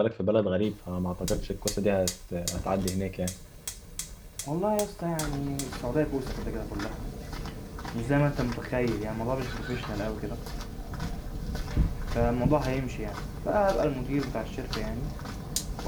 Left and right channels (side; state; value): both; identical; correlation 1.00